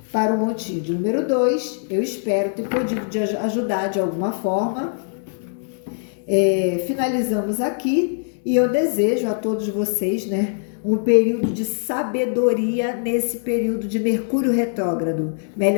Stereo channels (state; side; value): silent; right; digital silence